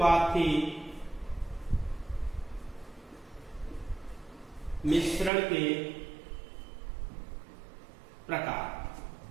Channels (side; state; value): left; drops out; at 5.3 s